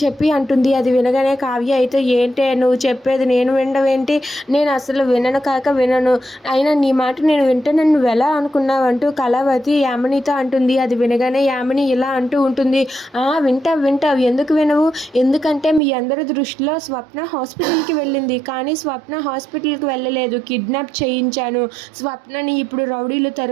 చెప్పి అంటుంది. అది వినగానే కావ్య అయితే ఏంటే నువ్వు చెప్పేది నేను వినడం, నేను అసలు వినను కాక వినను, అయినా నీ మాట నేను వింటానని నువ్వెలా అనుకున్నావంటూ కళావతి యామినితో అంటుంది. అది వినగానే యామిని ఇలా అంటూ ఉంటుంది. వింటావు ఎందుకు వినవు? ఎందుకంటే మీ అందరి దృష్టిలో స్వప్న హాస్పిటల్కి వెళ్ళింది, కానీ స్వప్న హాస్పిటల్కి వెళ్ళలేదు, కిడ్నాప్ చేయించాను, స్వప్నని ఇప్పుడు రౌడీలు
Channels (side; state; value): left; drops out; at 15.8 s